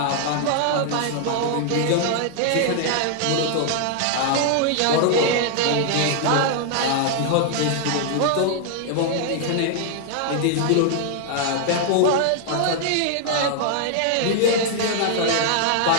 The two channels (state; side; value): different; both; correlation 0.00